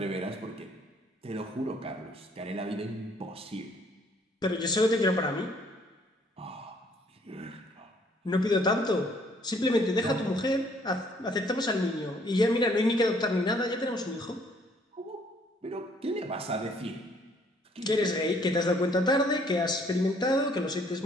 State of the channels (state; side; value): normal; both; correlation 0.63